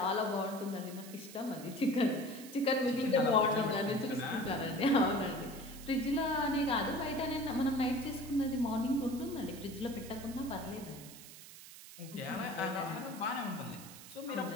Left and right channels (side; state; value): right; noise; hiss, 16 dB below the sound